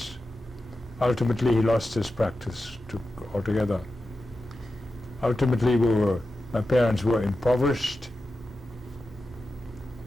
Ultimately, he lost his practice altogether. Ultimately, my parents were impoverished.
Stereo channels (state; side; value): normal; both; correlation 0.92